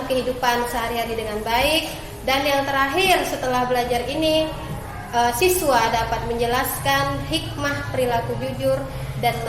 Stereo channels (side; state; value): both; identical; correlation 1.00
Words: kehidupan sehari-hari dengan baik. Dan yang terakhir, setelah belajar ini, siswa dapat menjelaskan hikmah perilaku jujur dan